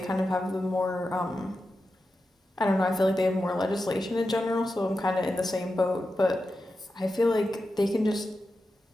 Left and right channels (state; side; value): normal; both; correlation 0.91